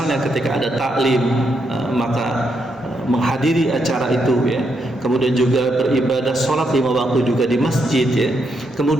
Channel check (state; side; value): normal; both; correlation 0.79